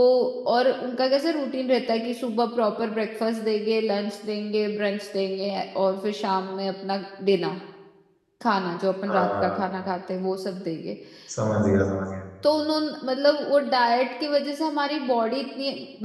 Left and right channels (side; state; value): both; identical; correlation 1.00